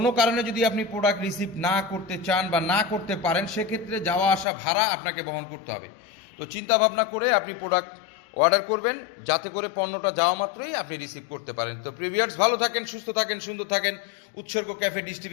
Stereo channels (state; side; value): drops out; right; at 4.5 s